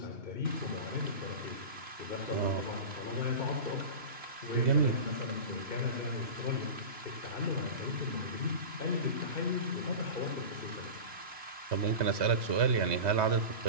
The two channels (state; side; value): late; left; 2.9 ms